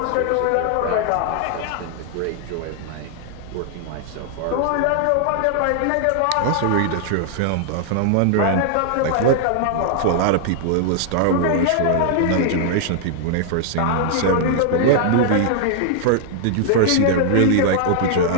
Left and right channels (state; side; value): different; both; correlation 0.00